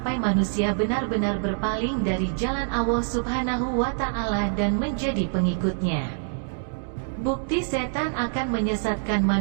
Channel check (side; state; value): left; silent; digital silence